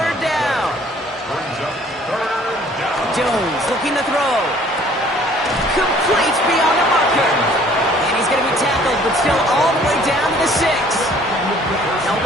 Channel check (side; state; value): both; normal; correlation 0.56